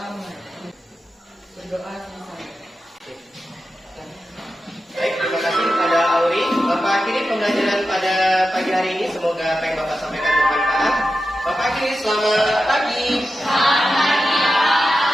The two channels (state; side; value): normal; both; correlation 0.91